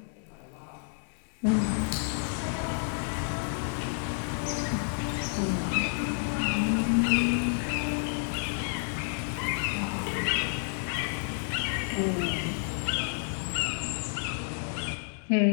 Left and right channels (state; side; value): silent; right; digital silence